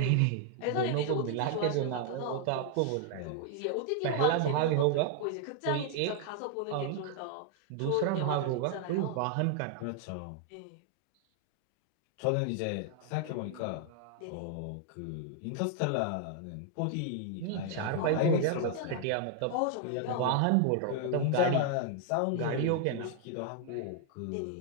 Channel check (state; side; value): different; both; correlation 0.00